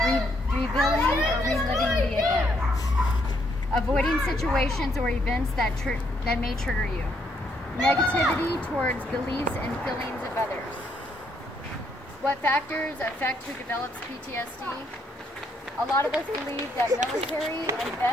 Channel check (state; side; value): normal; both; correlation 0.72